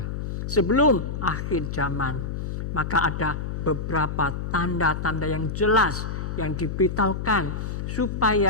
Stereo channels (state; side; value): noise; left; hum, 4 dB below the sound